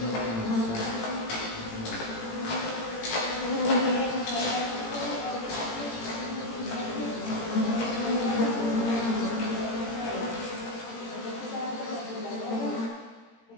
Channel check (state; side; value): late; right; 18 ms